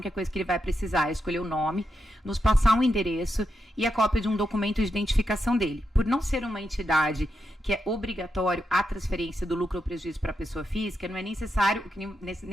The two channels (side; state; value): both; normal; correlation 0.85